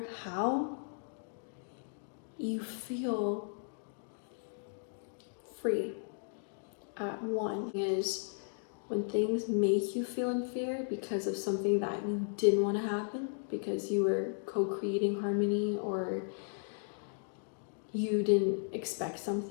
how, you feel free. At one is when things make you feel in fear because of something that you didn't want to happen, because you were co-creating harmony or you didn't expect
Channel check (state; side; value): silent; right; digital silence